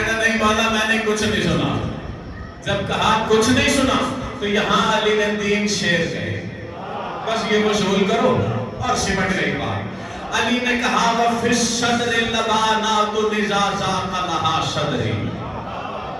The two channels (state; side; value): identical; both; correlation 1.00